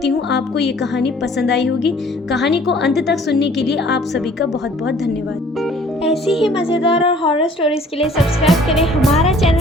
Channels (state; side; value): normal; both; correlation 0.55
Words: हूँ आपको ये कहानी पसंद आई होगी। कहानी को अंत तक सुनने के लिए आप सभी का बहुत बहुत धन्यवाद। ऐसी ही मज़ेदार और हॉरर स्टोरीज के लिए सब्सक्राइब करें हमारा